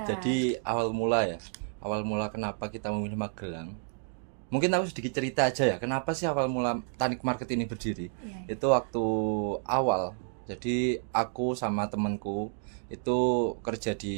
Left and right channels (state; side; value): silent; left; 58 dB below the other